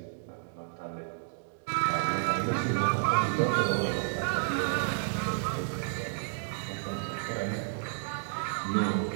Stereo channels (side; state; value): left; silent; digital silence